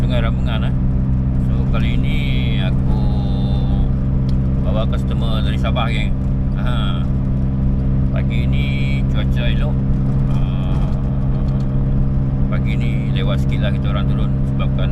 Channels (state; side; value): identical; both; correlation 1.00